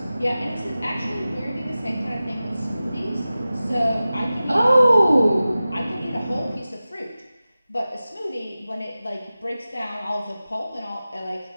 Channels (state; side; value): inverted; both; correlation -0.96